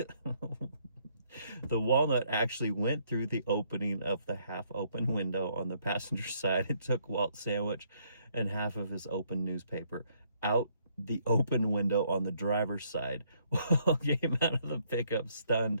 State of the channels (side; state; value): both; inverted; correlation -0.69